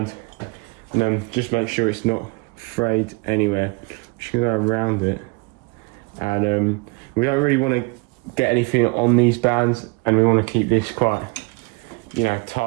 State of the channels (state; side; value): quieter; left; 29.1 dB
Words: and then just make sure it's not frayed anywhere. I'm just going to go around it, and we don't really want to get anything on these bands, and we want to keep this quite, you know,